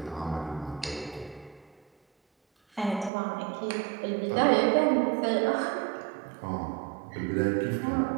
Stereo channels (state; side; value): drops out; left; at 3.1 s